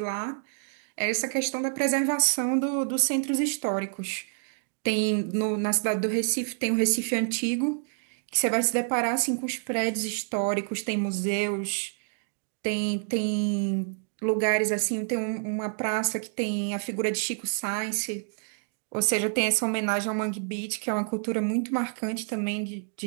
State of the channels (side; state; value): left; silent; digital silence